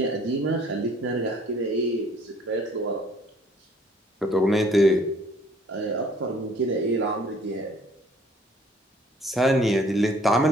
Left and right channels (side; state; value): both; normal; correlation 0.58